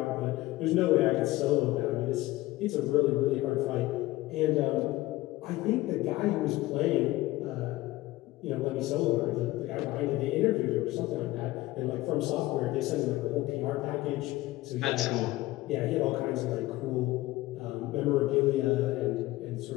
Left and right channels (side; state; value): right; quieter; 17.9 dB